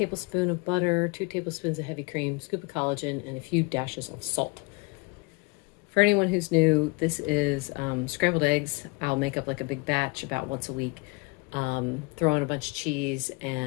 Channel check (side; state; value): right; quieter; 28.7 dB